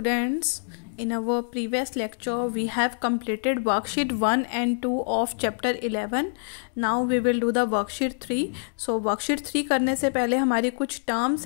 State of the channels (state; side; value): silent; right; digital silence